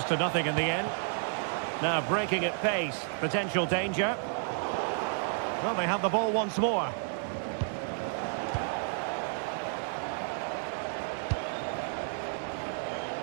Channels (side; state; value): left; silent; 57 dB below the other